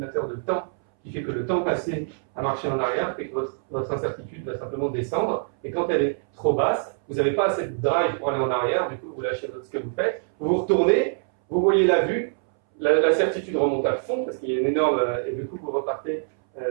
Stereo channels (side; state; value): left; silent; 62 dB below the other